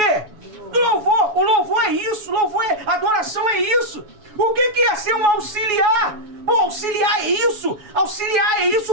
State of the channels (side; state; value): left; late; 7.1 ms